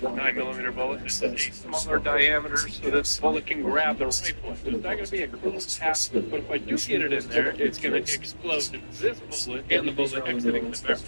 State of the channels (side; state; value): both; inverted; correlation -1.00